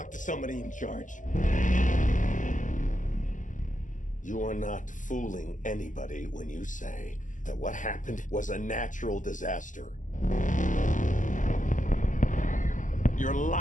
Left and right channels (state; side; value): late; right; 0.37 ms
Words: to somebody in charge. You are not fooling anybody when you say that what happened was a natural disaster. You're